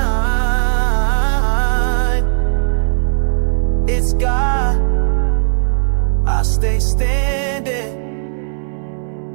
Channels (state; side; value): silent; left; 64 dB below the other